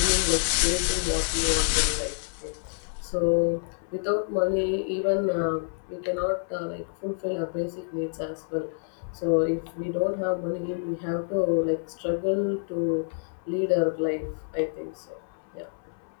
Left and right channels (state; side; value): silent; right; 60 dB below the other